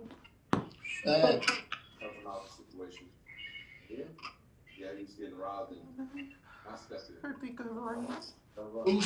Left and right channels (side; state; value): both; identical; correlation 1.00